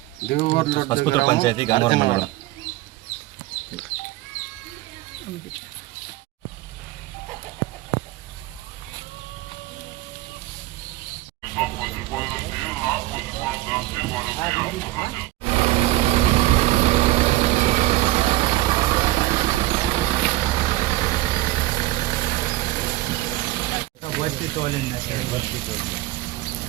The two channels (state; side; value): quieter; left; 17.2 dB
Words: పసుపుత్ర పంచాయతీ, గన్నవరం మండలం.